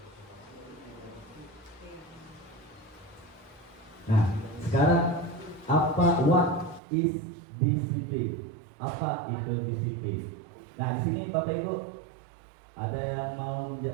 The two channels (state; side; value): drops out; left; at 6.8 s